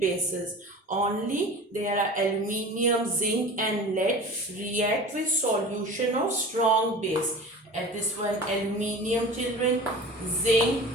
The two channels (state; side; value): normal; both; correlation 0.37